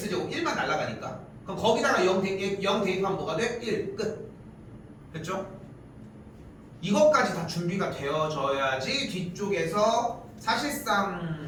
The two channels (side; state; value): both; identical; correlation 1.00